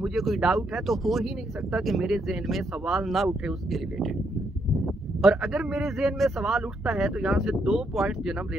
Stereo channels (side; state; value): both; normal; correlation 0.76